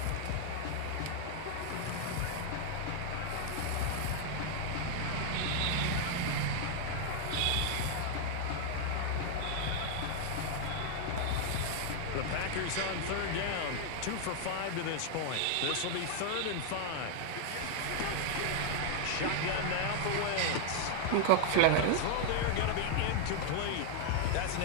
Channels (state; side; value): different; both; correlation 0.00